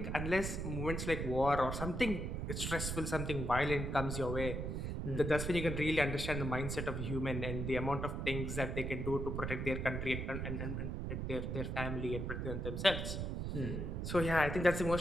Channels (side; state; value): right; noise; rumble, 3 dB below the sound